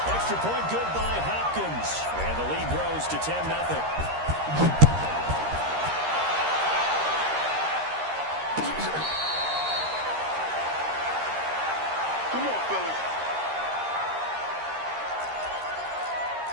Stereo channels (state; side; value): late; left; 13 ms